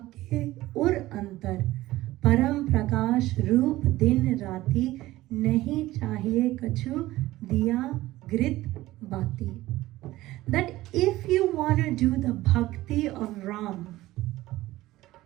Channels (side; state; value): left; quieter; 16.9 dB